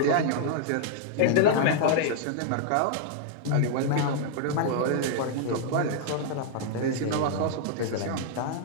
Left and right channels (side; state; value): both; different; correlation -0.01